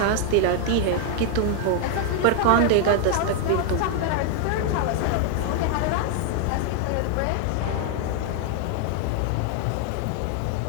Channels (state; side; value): different; both; correlation 0.00